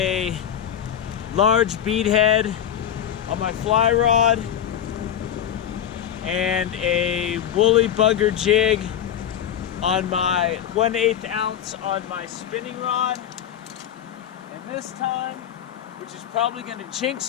large beadhead on my fly rod and a woolly bugger jig on my 1/8 ounce on my spinning rod. And this time, which is probably gonna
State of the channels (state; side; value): quieter; right; 9.6 dB